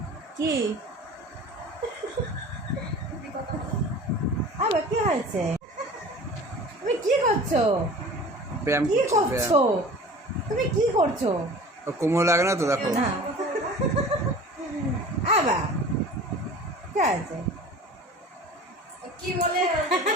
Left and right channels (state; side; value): normal; both; correlation 0.41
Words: কি আবার কি হয়েছে? তুমি কি করছো? ব্যায়াম কি করছে, করছো? তুমি কি করছো? ব্যায়াম। কোমর লাগে না তো দেখো। না আবার কি আছে? কি বলে